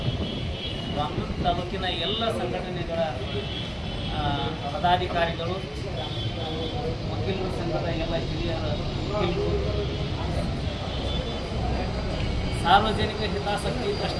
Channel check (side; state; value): both; identical; correlation 1.00